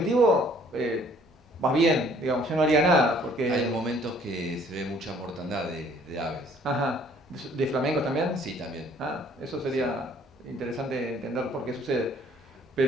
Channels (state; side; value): normal; both; correlation 0.59